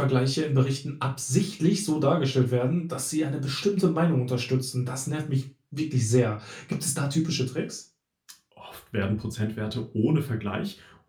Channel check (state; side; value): identical; both; correlation 1.00